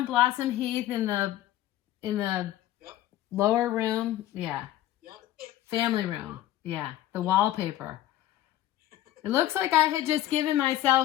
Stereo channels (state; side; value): quieter; right; 13.7 dB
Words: Blossom Heath in the Yep. lower room? Yeah. Yep. Family room. Yeah. The wallpaper. It looks like I had just given